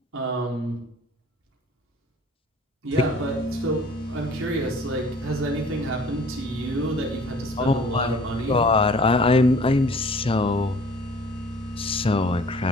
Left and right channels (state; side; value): normal; both; correlation 0.51